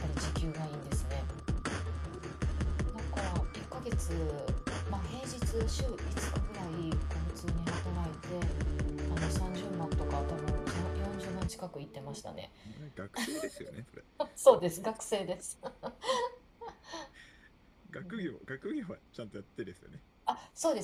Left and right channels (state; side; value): identical; both; correlation 1.00